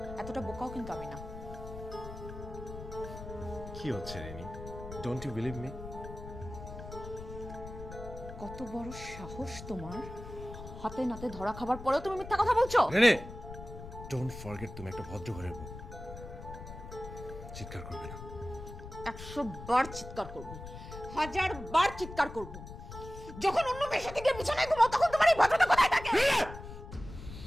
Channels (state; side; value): noise; left; rumble, 12 dB below the sound